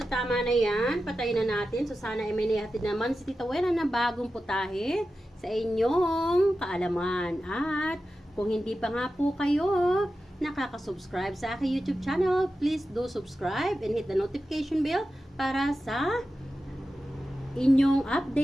tama na yan. Patayin na natin. So sana ay may nahatid naman si Tita Wena na bagong putahe sa inyong kaalaman. At kung hindi pa nga po kayo nakaka-subscribe sa aking YouTube channel, please do subscribe and hit the notification bell para sa inyong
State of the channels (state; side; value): normal; both; correlation 0.92